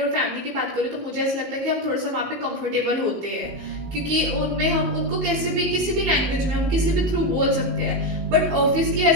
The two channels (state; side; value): late; left; 19 ms